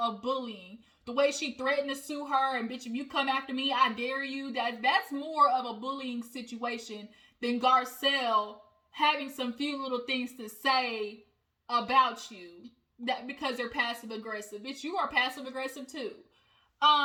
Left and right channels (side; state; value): both; identical; correlation 1.00